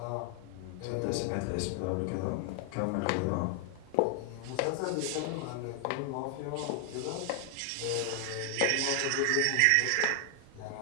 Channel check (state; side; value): different; both; correlation 0.00